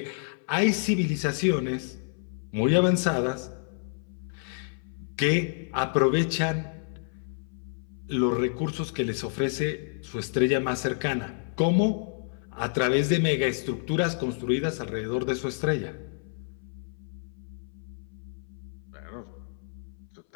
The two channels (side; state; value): right; silent; 59 dB below the other